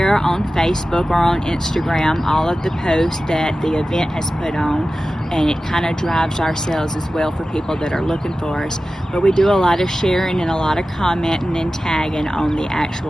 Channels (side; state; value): both; normal; correlation 0.95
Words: on Facebook or on Instagram all of the posts that the event has put on, and it kind of drives our sales as well for people that are looking for us. But we do a lot of sharing and a lot of commenting and tagging on the